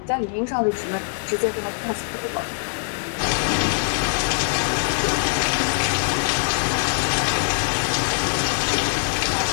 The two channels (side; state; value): right; silent; digital silence